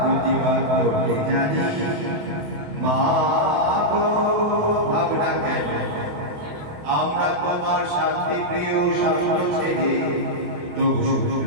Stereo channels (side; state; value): left; late; 28 ms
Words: করতে জানি মা গো ভাবনা কেন আমরা তোমার শান্তি প্রিয় শান্ত ছেলে তবু